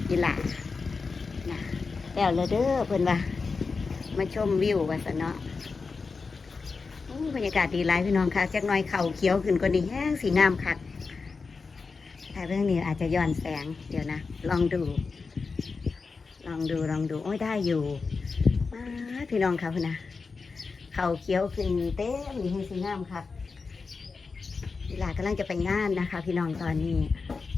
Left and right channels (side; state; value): right; quieter; 4.6 dB